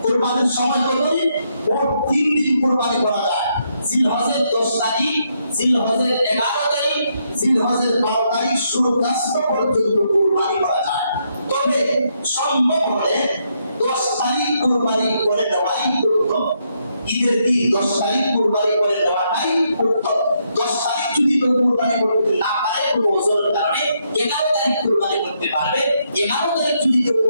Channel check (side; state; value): both; inverted; correlation -0.77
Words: কুরবানির সময় কত দিন? মোট 3 দিন কুরবানি করা যায়। জিলহজের 10 তারিখ, জিলহজের 11 তারিখ, জিলহজের 12 তারিখ সূর্যাস্ত পর্যন্ত কুরবানি করা যায়। তবে সম্ভব হলে 10 তারিখ কুরবানি করে দেওয়াই উত্তম। ঈদের দিন 10 তারিখ কুরবানি করে দেওয়াটাই উত্তম। 10 তারিখ যদি কেউ কুরবানি করতে না পারে কোনো ওজনের কারণে 11 তারিখ কুরবানি করতে পারবে। 11 তারিখ যদি কেউ